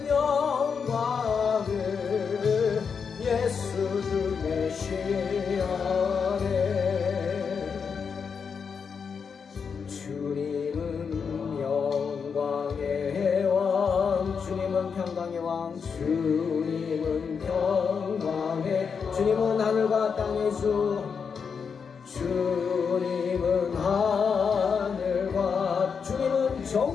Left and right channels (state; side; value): quieter; right; 6.1 dB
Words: 영광을 예수 주 메시아네 주님은 영광의 왕 주님은 평강의 왕 주님은 평강의 주님은 하늘과 땅의 주 주님은